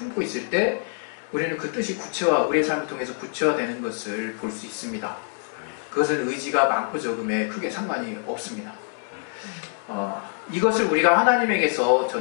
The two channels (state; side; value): silent; right; 62 dB below the other